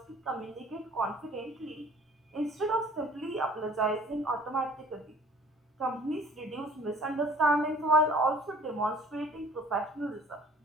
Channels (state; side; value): normal; both; correlation 0.51